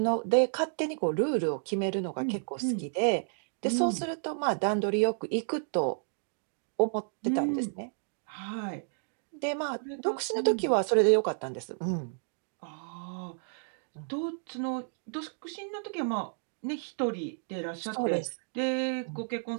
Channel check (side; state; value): left; silent; digital silence